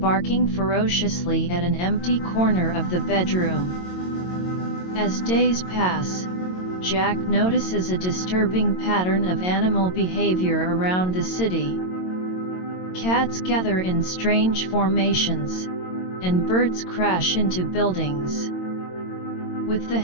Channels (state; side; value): late; right; 22 ms